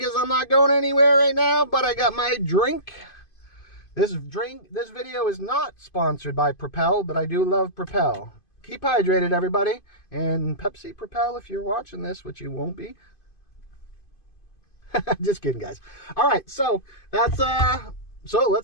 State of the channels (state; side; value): late; right; 2.5 ms